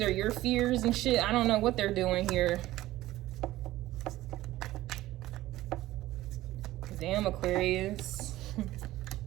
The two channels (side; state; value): left; quieter; 16.0 dB